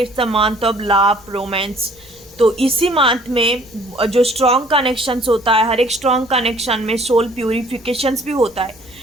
It's the month of love, romance. तो इसी मंथ में जो स्ट्रॉन्ग कनेक्शंस होता है, हर एक स्ट्रॉन्ग कनेक्शन में सोल प्यूरिफिकेशंस भी होता है।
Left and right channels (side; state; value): right; noise; rumble, 28 dB below the sound